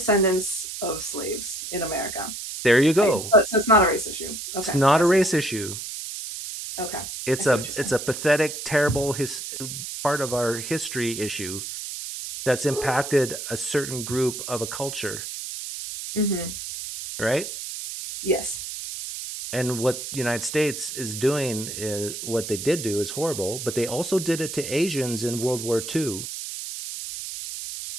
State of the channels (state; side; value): noise; right; hiss, 7 dB below the sound